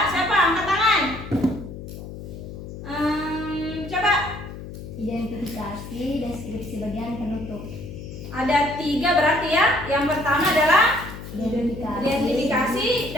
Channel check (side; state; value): left; noise; hum, 11 dB below the sound